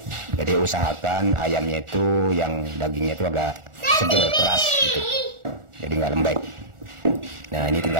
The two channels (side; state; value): left; late; 1.4 ms